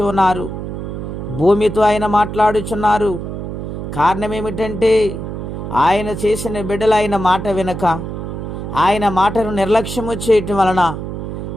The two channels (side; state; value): right; noise; hum, 6 dB below the sound